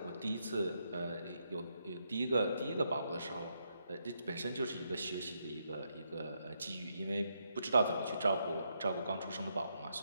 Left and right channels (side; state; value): both; inverted; correlation -0.79